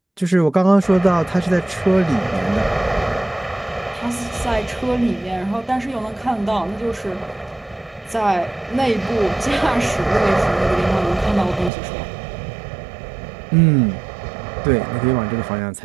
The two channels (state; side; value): drops out; left; at 11.7 s